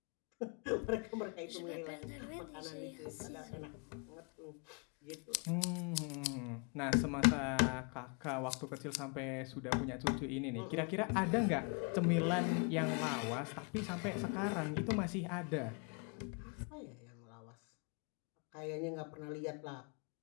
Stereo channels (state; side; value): quieter; right; 35.6 dB